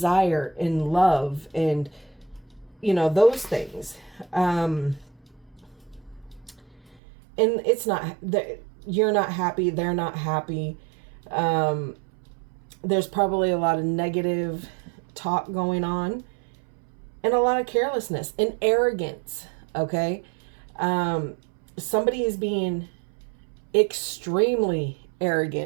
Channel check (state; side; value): drops out; left; at 7.0 s